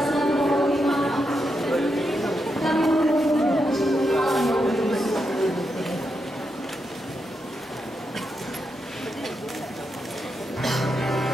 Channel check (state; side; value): normal; both; correlation 0.84